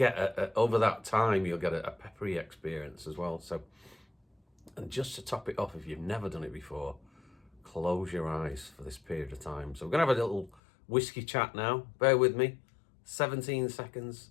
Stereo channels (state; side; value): drops out; right; at 10.6 s